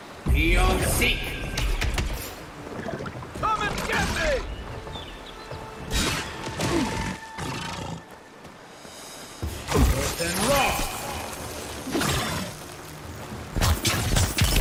Beyond seek. Come and get me! Earth and rock.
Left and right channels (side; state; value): both; identical; correlation 1.00